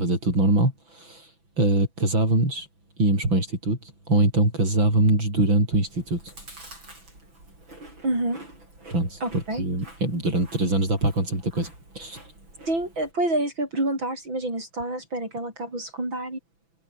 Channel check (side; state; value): left; late; 6.0 ms